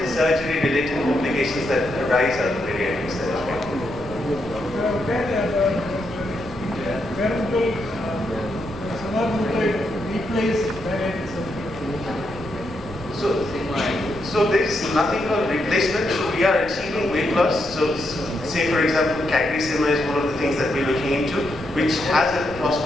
the surgery-related complications that arise out of bariatric surgery. Where will semaglutide replace bariatric surgery? So there is nothing called replacement. So we are achieving weight loss. So say for example, CagriSema is one of the things that we're looking into, which has a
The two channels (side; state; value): left; noise; rumble, 17 dB below the sound